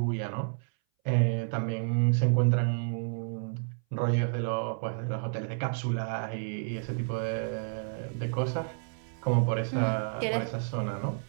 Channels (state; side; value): silent; left; 58 dB below the other